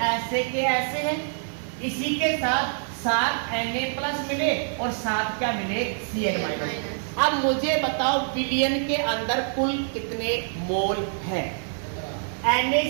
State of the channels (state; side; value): silent; left; 61 dB below the other